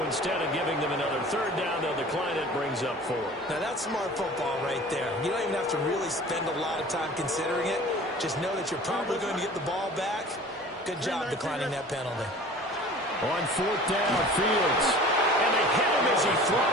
instead of giving them another 3rd down, they'll decline it, brings up 4. Now that's smart football right there. You don't even have to really spend a lot of time considering it. Just know that you're probably going to get the ball back. Good job declining that penalty. On 4th down, Fields. And they hit him as he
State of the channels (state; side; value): normal; both; correlation 0.43